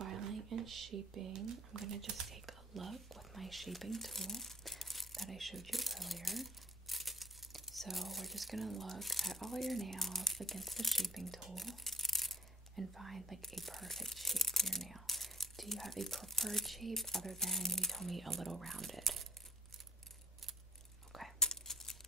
and shaping, I'm gonna just take a look with my shaping tool that I showed you earlier. So we're just gonna look at all your nails against the shaping tool and find like a perfect shape for your nail. Do you have a preferred shape other than you told me a little rounded? Okay.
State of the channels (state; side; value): normal; both; correlation 0.56